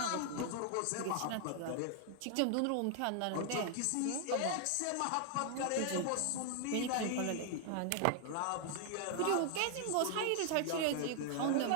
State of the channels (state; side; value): different; both; correlation 0.00